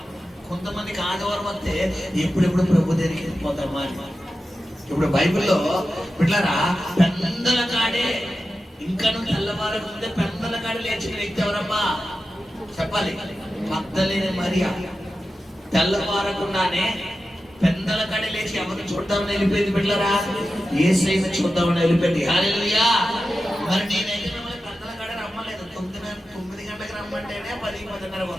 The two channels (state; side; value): normal; both; correlation 0.92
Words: కొంతమందికి ఆదివారం వస్తే ఎప్పుడెప్పుడు ప్రభు దగ్గరికి వెళ్ళిపోతామా అని. ఇప్పుడు బైబిల్లో బిడ్డలారా పెద్దల కాడే ఇంకా తెల్లవారకు ముందే పెద్దల కాడ లేచిన వ్యక్తి ఎవరమ్మా చెప్పాలి? మగ్దలేని మరియా. తెల్లవారకుండానే పెద్దల కాడ లేచి ఎవరిని చూద్దామని వెళ్ళిపోయింది బిడ్డలారా, యేసయ్యని చూద్దామని వెళ్ళిపోయింది. హల్లెలూయా. మరి నేనైతే మిమ్మల్ని పెద్దల కాడ రమ్మలేదు. 9 గంటలకు రమ్మంటేనే 10-10:30